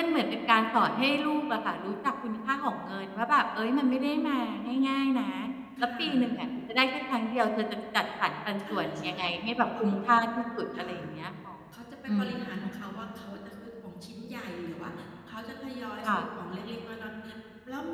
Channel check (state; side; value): identical; both; correlation 1.00